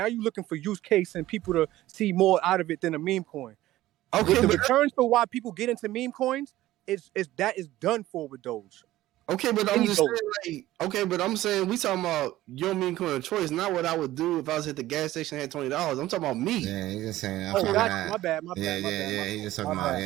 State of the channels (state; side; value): quieter; left; 15.6 dB